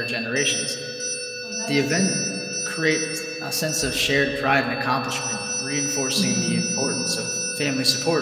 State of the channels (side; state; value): both; identical; correlation 1.00